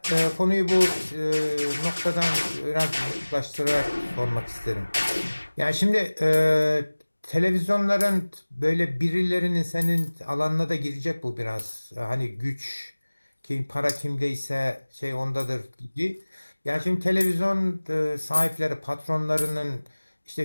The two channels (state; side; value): inverted; both; correlation -1.00